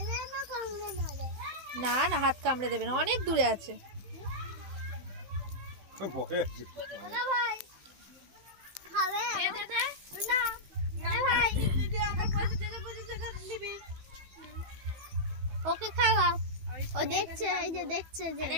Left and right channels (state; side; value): late; left; 15 ms